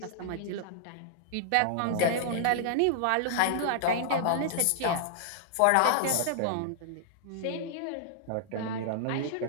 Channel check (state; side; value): different; both; correlation -0.01